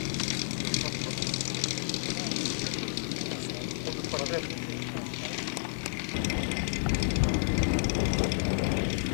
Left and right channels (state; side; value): silent; right; 57 dB below the other